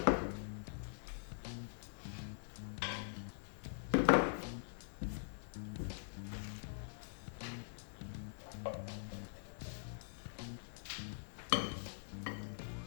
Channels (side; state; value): right; silent; digital silence